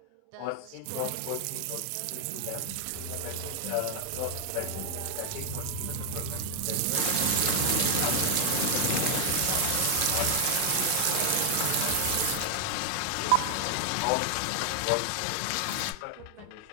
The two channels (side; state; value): both; different; correlation 0.00